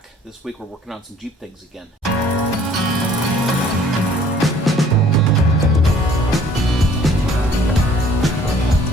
This week we're working on some Jeep things again.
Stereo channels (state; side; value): normal; both; correlation 0.56